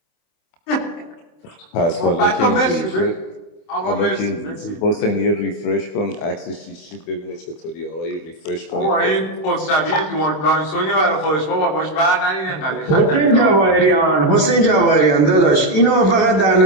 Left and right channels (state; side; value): late; right; 26 ms